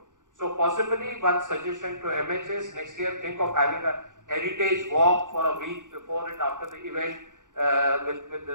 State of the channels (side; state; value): left; late; 0.87 ms